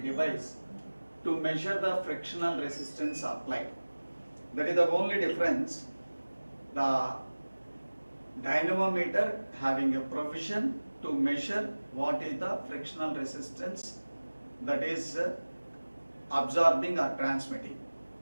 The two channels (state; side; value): inverted; both; correlation -1.00